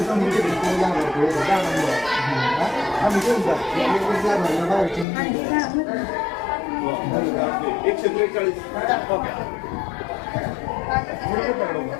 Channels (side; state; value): right; drops out; at 5.1 s